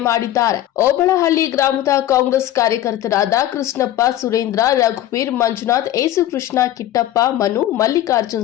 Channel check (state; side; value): quieter; right; 13.2 dB